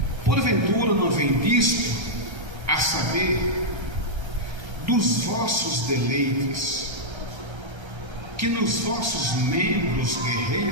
Porventura não vem disto, a saber, dos vossos deleites, que nos vossos membros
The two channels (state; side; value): late; left; 1.3 ms